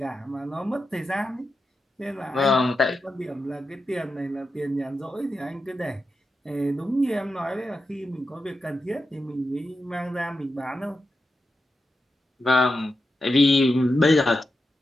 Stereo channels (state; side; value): normal; both; correlation 0.89